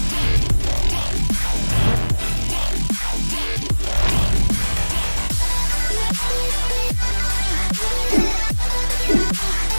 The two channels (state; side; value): inverted; both; correlation -1.00